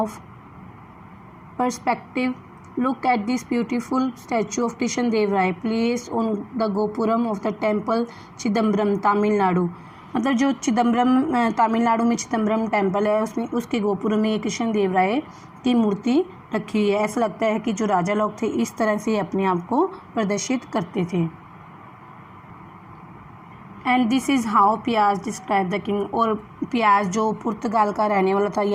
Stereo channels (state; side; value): identical; both; correlation 1.00